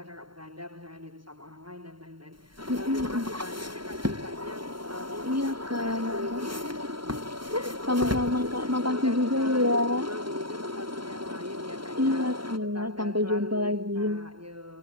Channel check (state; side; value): late; left; 0.73 ms